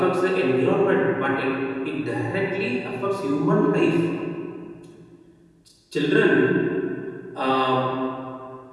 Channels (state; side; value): identical; both; correlation 1.00